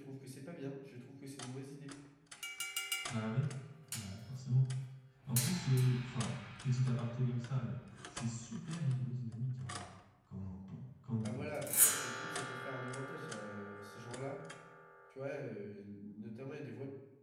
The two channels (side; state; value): both; identical; correlation 1.00